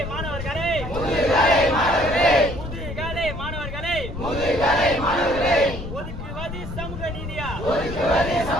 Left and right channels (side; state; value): left; noise; rumble, 8 dB below the sound